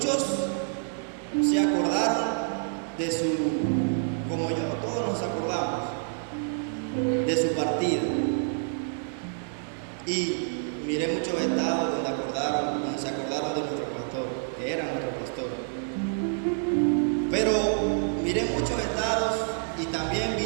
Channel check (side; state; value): left; silent; digital silence